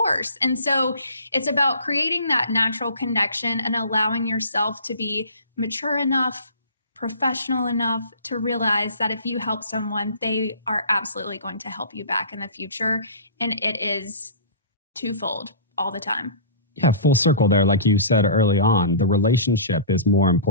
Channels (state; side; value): inverted; both; correlation -0.40